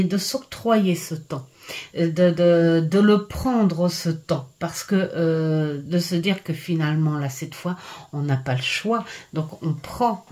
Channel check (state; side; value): identical; both; correlation 1.00